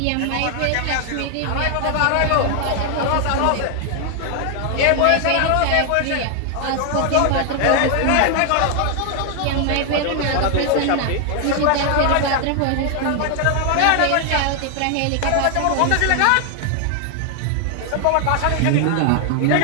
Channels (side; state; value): both; different; correlation 0.00